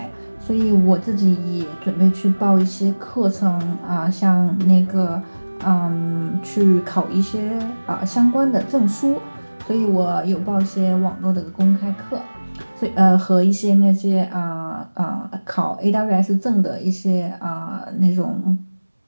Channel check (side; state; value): both; inverted; correlation -1.00